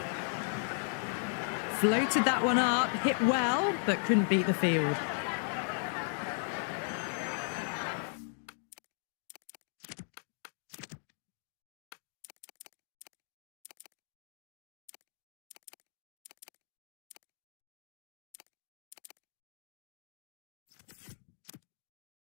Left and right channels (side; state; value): right; silent; 53 dB below the other